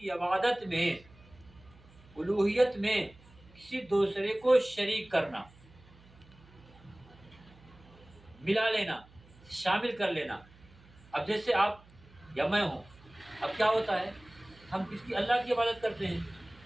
عبادت میں، الوہیت میں کسی دوسرے کو شریک کرنا، ملا لینا، شامل کر لینا۔ اب جیسے آپ یا میں ہوں، اب کیا ہوتا ہے، ہم کس کی؟ اللہ کی عبادت کرتے ہیں،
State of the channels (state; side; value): noise; right; hum, 25 dB below the sound